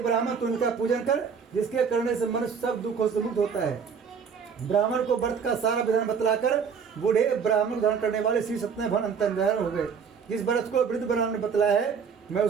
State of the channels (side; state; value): left; quieter; 6.4 dB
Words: ब्राह्मण तू उनका पूजन कर, जिसके करने से मनुष्य सब दुखों से मुक्त होता है। ब्राह्मण को व्रत का सारा विधान बतलाकर बूढ़े ब्राह्मण धारण करने वाले श्री सत्यनारायण भगवान अंतर्धान हो गए। जिस व्रत को वृद्ध ब्राह्मण ने बतलाया है मैं